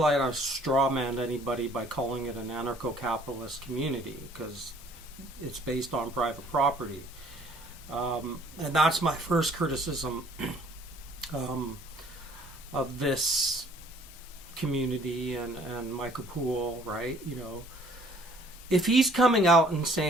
I've strawmanned anybody by calling it an anarcho-capitalist community, because it's based on private property. And that's my first criticism um, of this community and Michael Poole, right? You know, if he's coming out and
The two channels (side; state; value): both; normal; correlation 0.58